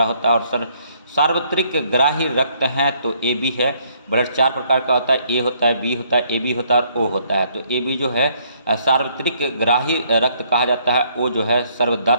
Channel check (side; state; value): both; inverted; correlation -0.67